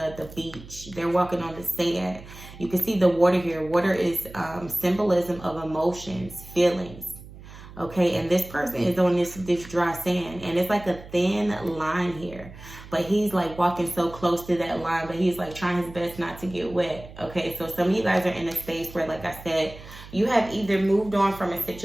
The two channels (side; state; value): right; noise; hum, 17 dB below the sound